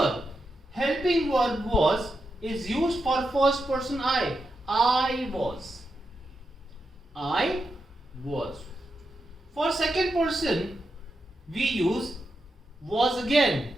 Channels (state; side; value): normal; both; correlation 0.87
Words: helping verb was is used for first person I. I was. I was. For second person, we use was again.